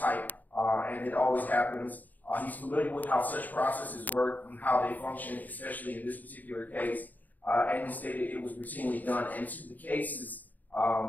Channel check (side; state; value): right; late; 0.082 ms